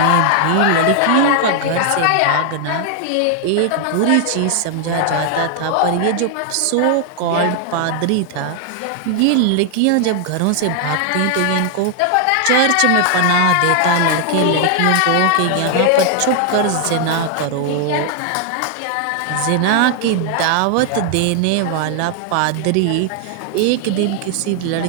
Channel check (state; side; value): different; both; correlation 0.00